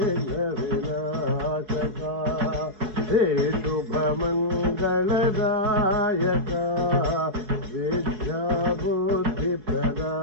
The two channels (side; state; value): left; late; 4.7 ms